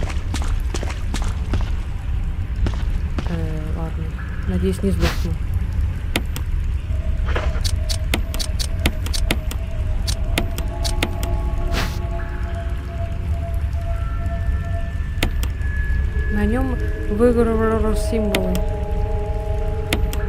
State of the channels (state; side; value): identical; both; correlation 1.00